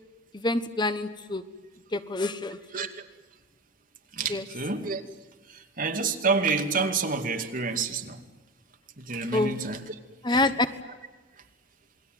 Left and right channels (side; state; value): both; normal; correlation 0.28